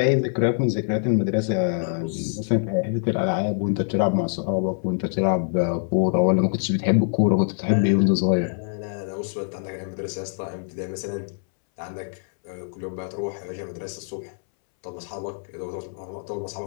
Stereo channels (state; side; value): silent; right; 62 dB below the other